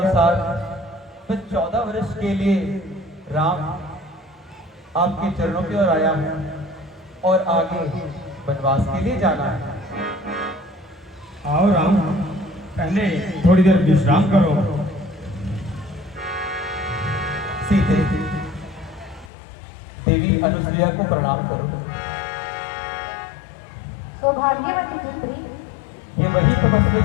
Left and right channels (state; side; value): drops out; right; at 19.3 s